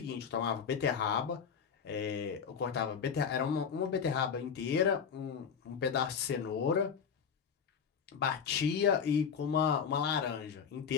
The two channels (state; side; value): quieter; right; 6.8 dB